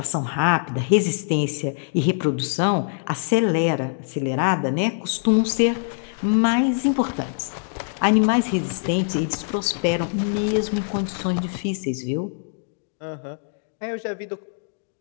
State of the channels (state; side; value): silent; right; digital silence